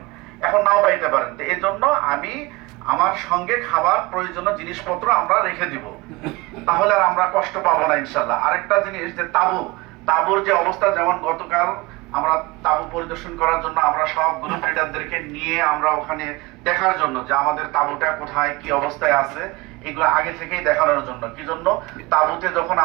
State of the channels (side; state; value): left; quieter; 22.9 dB